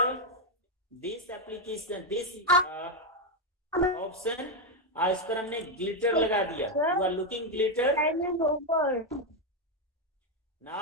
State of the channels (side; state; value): both; normal; correlation 0.04